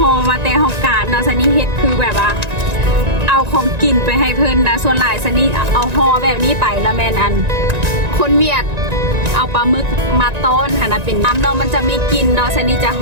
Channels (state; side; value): late; left; 1.9 ms